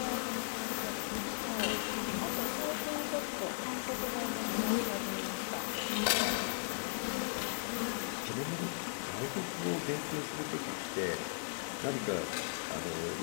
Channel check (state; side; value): silent; right; digital silence